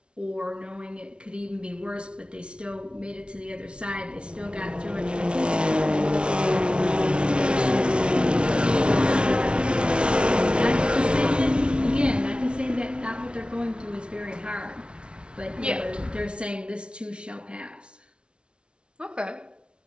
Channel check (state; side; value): late; left; 0.057 ms